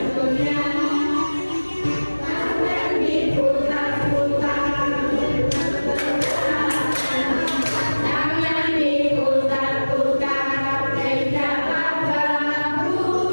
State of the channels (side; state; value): both; inverted; correlation -1.00